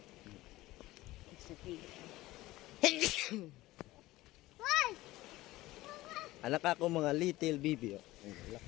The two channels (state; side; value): quieter; right; 17.8 dB